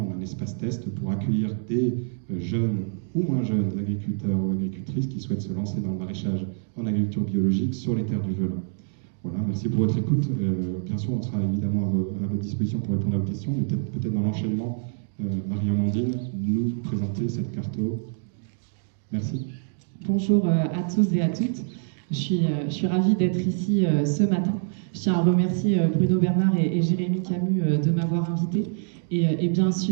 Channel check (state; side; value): silent; left; digital silence